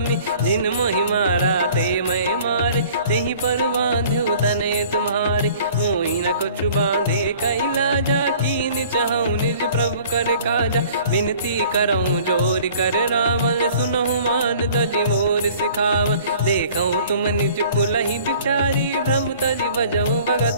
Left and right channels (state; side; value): inverted; both; correlation -0.51